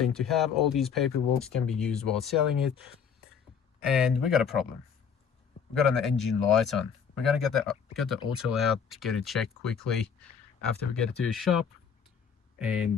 to have. All these paperwork can be used while selling it. And we got a problem. We got an engine light on. We're gonna get the auto out to get it checked quickly after we get it to the shop.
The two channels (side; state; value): right; quieter; 6.9 dB